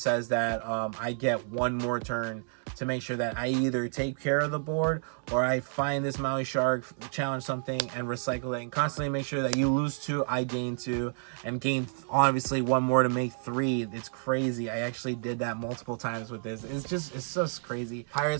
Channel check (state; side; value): silent; left; digital silence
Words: that I get 1 more turn to make sure that I either take care of the board, or I find this Maui Shark, challenge something, and recycle it, and constantly make sure that you lose 2, I gain 2, and gain obviously 1 more to make 3. It's crazy. I actually did that multiple times with this. It's just crazy.